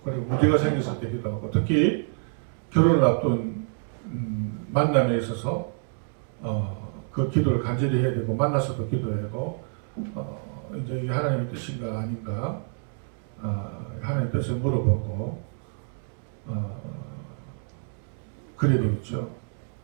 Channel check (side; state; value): left; silent; 56 dB below the other